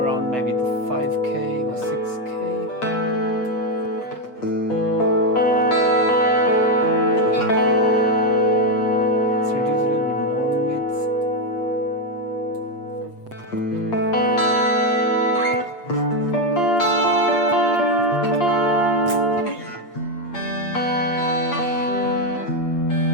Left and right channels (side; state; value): left; late; 7.8 ms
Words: around maybe the 5K or 6K.